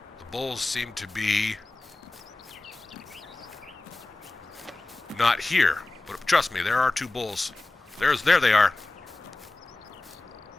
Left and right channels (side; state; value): right; quieter; 3.1 dB